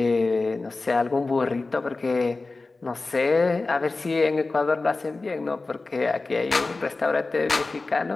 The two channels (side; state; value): right; quieter; 3.5 dB